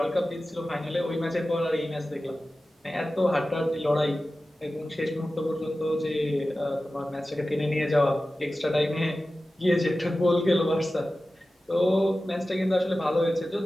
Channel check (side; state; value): both; normal; correlation 0.95